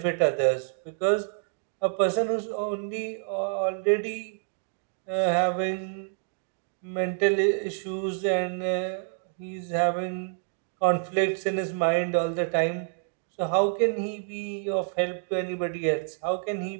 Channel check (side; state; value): left; silent; digital silence